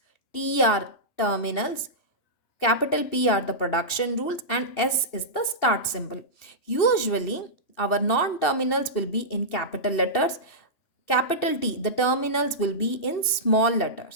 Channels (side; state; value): right; late; 2.7 ms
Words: T are terminals, capital P are the production rules, and S is the start symbol. Usually our non-terminals will be in capital letters. Capital T, the terminals will be in small